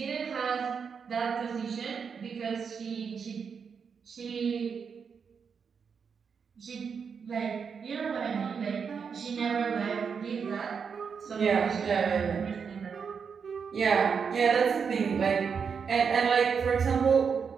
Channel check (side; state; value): left; quieter; 6.2 dB